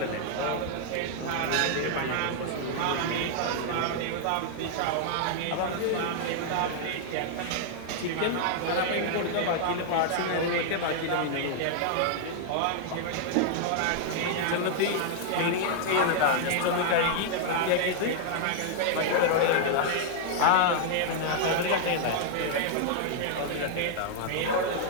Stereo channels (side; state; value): both; different; correlation -0.01